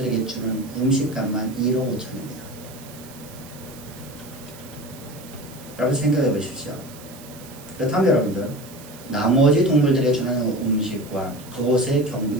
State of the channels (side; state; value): right; noise; hiss, 19 dB below the sound